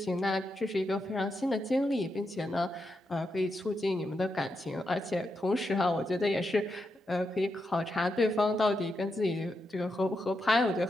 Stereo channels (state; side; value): normal; both; correlation 0.85